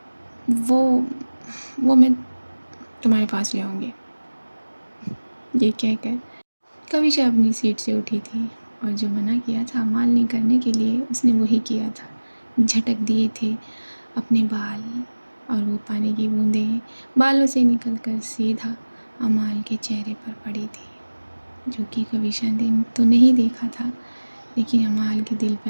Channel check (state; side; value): inverted; both; correlation -1.00